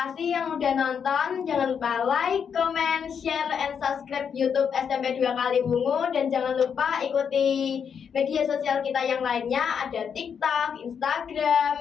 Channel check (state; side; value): quieter; right; 7.2 dB